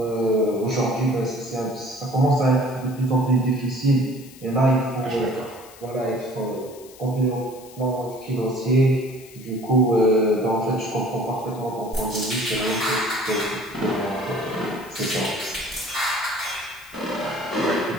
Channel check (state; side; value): noise; left; hiss, 21 dB below the sound